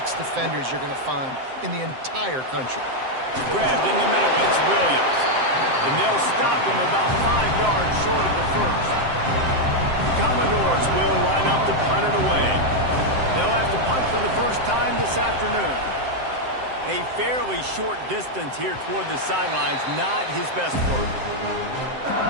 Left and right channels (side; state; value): left; late; 7.7 ms